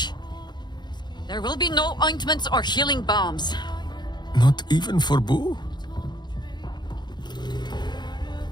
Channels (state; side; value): late; right; 0.21 ms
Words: There will be no ointments or healing balms. Not even for Boo?